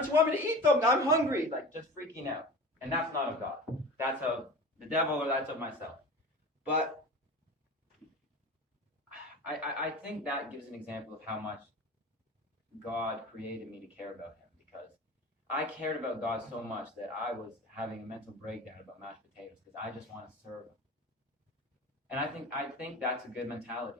you want me to eat them? I'm hungry. Like, just freaking out. And that's not of God. That's of the devil, or that's of myself. But I think that gives an example of how much God created me to care about Him, because I cared about God so much that I was having a mental breakdown about mashed potatoes because I just want to serve Him. And I think that's a good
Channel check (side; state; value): both; normal; correlation 0.34